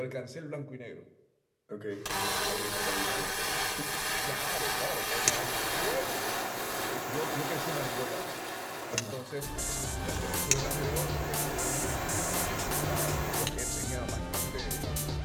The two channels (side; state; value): both; identical; correlation 1.00